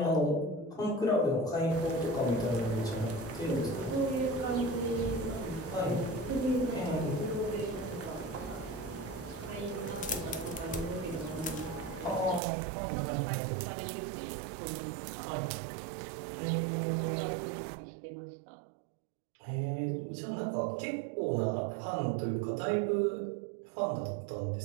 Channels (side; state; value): left; drops out; at 12.4 s